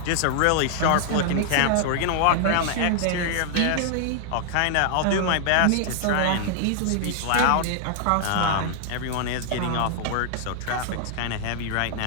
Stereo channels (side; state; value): both; different; correlation -0.01